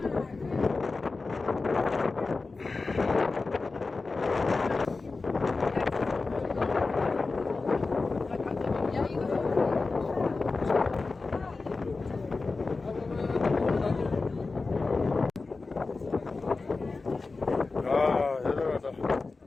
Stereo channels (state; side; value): quieter; right; 3.8 dB